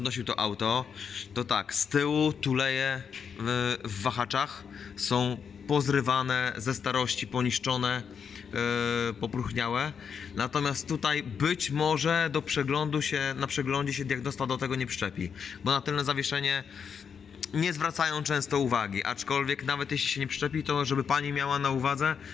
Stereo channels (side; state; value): right; quieter; 6.8 dB